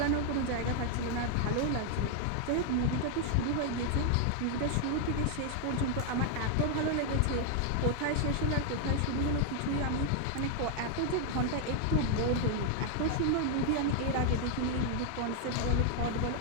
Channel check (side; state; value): both; different; correlation 0.00